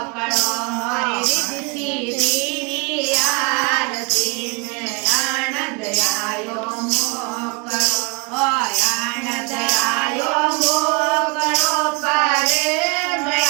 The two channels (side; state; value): left; quieter; 30.1 dB